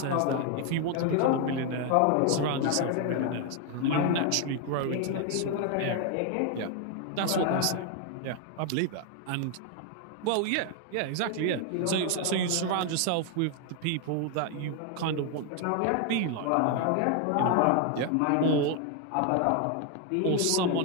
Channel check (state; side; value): different; both; correlation 0.01